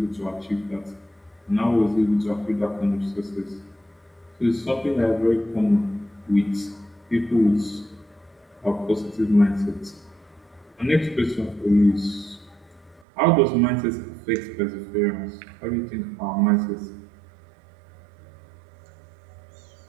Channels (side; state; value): left; drops out; at 13.1 s